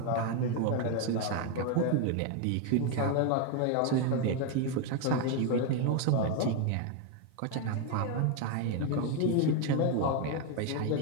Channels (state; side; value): different; both; correlation 0.01